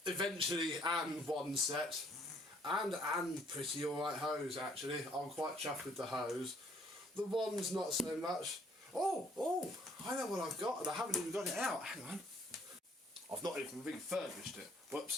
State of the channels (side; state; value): both; normal; correlation 0.63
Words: eventually one set and pretty alright hose actually. I'm quite chuffed with the hose. The one's not so much. Oh, I know what I've got and I haven't even got it out. Hang on. I've not even refurbished it.